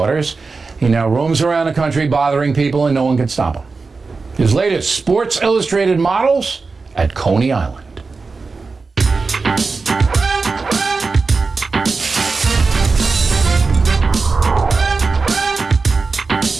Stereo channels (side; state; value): left; quieter; 4.2 dB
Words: He now roams around the country bothering people, and no one can stop him. His latest Sports Illustrated models at Coney Island.